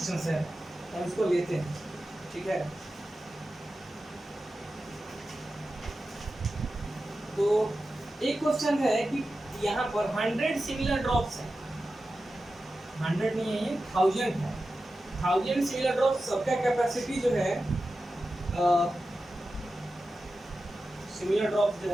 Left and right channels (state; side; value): normal; both; correlation 0.93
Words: है, हम इसको लेते हैं, ठीक है। तो एक क्वेश्चन है कि यहाँ पर 100 सिमिलर ड्रॉप्स हैं, 100 नहीं है, 1000 है। 1000 सिमिलर ड्रॉप्स, सबका कैपेसिटी जो है सिमिलर ड्रॉप्स जो